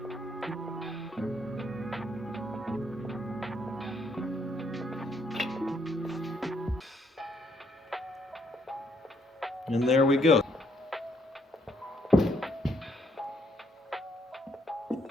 And there we go.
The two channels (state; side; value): normal; both; correlation 0.72